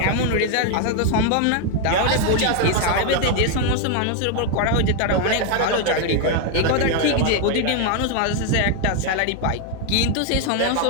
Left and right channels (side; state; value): both; different; correlation 0.01